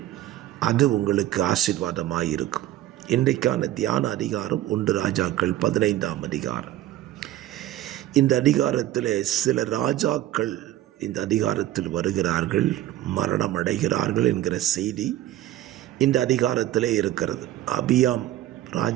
அது உங்களுக்கு ஆசீர்வாதமாக இருக்கும். இன்றைக்கான தியான அதிகாரம் 1 ராஜாக்கள் 15ஆம் அதிகாரம். இந்த அதிகாரத்தில் சில ராஜாக்கள் இந்த அதிகாரத்தில் வருகிறார்கள், மரணம் அடைகிறார்கள் என்கிற செய்தி இந்த அதிகாரத்திலே இருக்கிறது. அபியாம்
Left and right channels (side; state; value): left; quieter; 14.1 dB